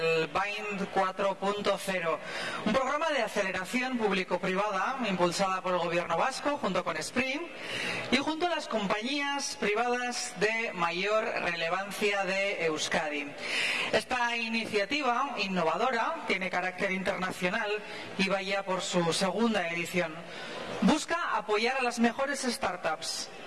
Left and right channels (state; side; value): identical; both; correlation 1.00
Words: BIND 4.0, un programa de aceleración público-privada impulsada por el gobierno vasco junto con Spring y junto a las compañías privadas de mayor relevancia de Euskadi. Esta iniciativa innovadora tiene carácter internacional y va ya por su segunda edición. Busca apoyar a las mejores startups